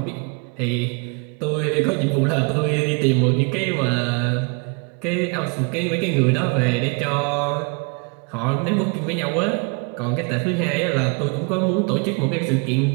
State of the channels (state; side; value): quieter; left; 31.9 dB